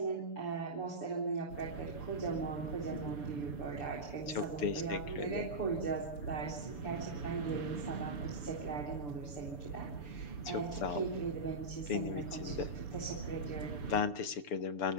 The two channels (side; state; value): right; late; 6.9 ms